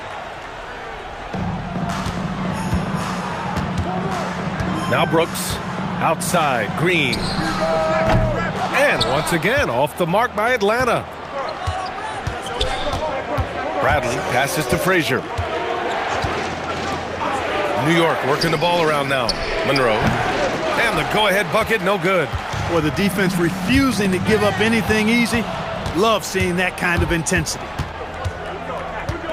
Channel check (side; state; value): both; identical; correlation 1.00